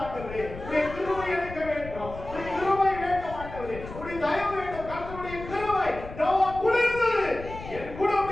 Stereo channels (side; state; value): left; noise; rumble, 12 dB below the sound